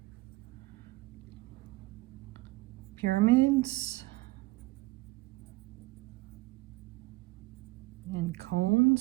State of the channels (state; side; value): quieter; left; 21.1 dB